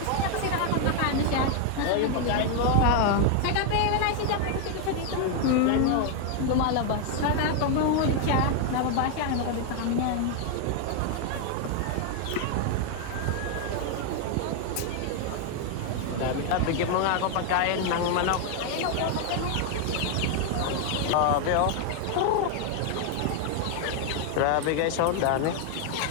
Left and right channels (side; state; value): both; different; correlation 0.00